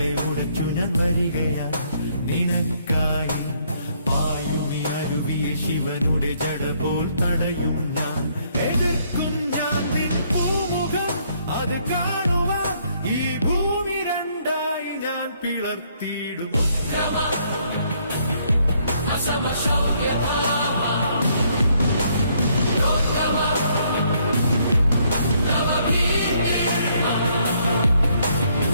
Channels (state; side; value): inverted; both; correlation -0.69